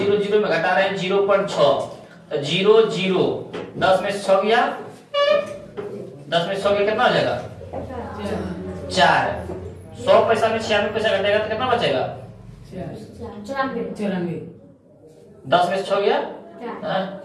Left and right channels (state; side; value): identical; both; correlation 1.00